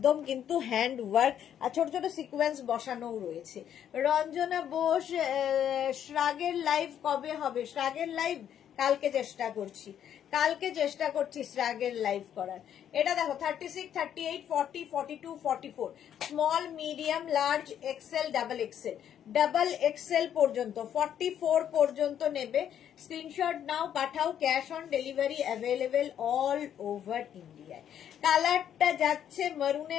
কিন্তু হ্যান্ড ওয়ার্ক, আর ছোট ছোট সিকোয়েন্স বসানো রয়েছে। রঞ্জনা বোস, শ্রাগের লাইভ কবে হবে? শ্রাগের লাইভ কালকে চেষ্টা করছি শ্রাগের লাইভ করার। এটা দেখো 36, 38, 40, 42, 44, small medium large XL double XL পর্যন্ত 44 পর্যন্ত নেবে। স্ক্রিনশট নাও, পাঠাও। Cash on delivery available all over ইন্ডিয়ায়। কালারটা যাচ্ছে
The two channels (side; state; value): right; quieter; 9.7 dB